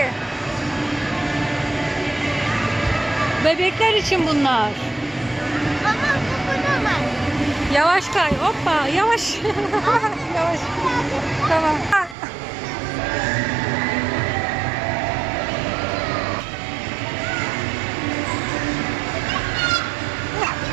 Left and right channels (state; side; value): drops out; left; at 12.2 s